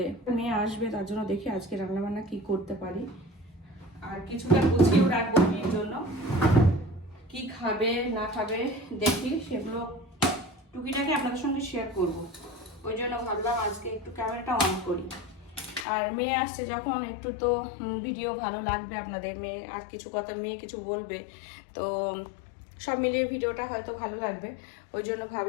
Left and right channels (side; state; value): right; drops out; at 15.9 s